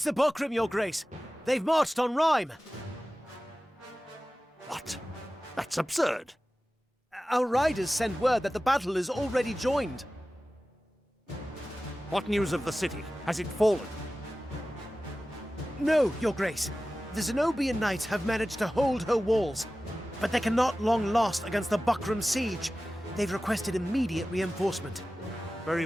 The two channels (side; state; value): both; normal; correlation 0.96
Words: the Buckram, Your Grace. They've marched on Rhyme. What? That's absurd. Our riders send word that the battle is already joined. What news of the city? Has it fallen? No, Your Grace. The Zenobian knights have managed to hold her walls, but they cannot long last against the Buckram siege. They've requested immediate reinforcement.